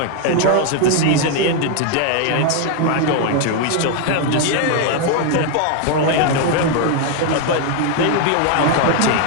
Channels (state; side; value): different; both; correlation 0.01